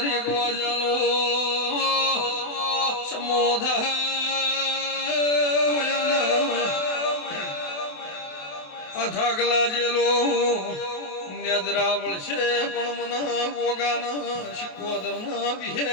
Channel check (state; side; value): late; right; 28 ms